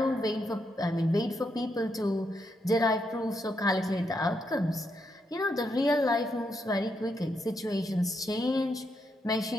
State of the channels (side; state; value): both; normal; correlation 0.80